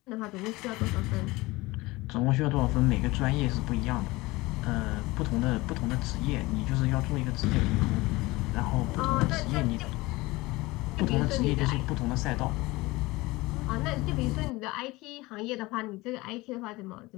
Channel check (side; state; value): right; quieter; 21.3 dB